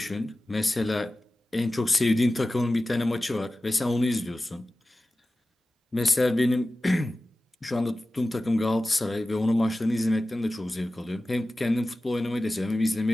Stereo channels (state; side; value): normal; both; correlation 0.96